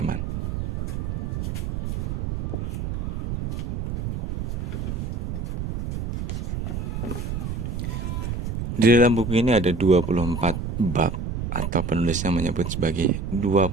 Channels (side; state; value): right; noise; rumble, 3 dB below the sound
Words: Di dalam buku ini ada 24 bab, atau penulisnya menyebut sebagai